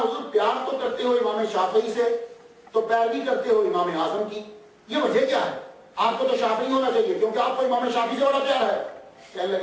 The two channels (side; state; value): both; identical; correlation 1.00